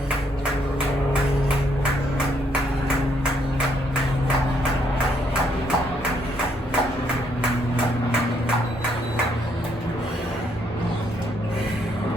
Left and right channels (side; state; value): both; normal; correlation 0.71